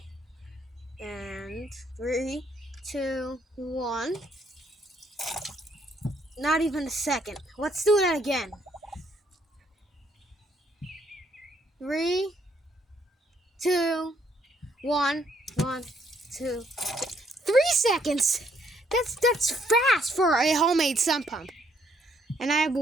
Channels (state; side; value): normal; both; correlation 0.69